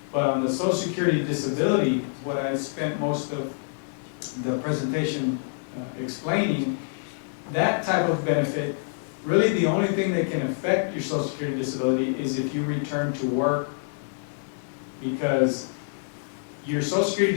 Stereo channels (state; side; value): silent; right; digital silence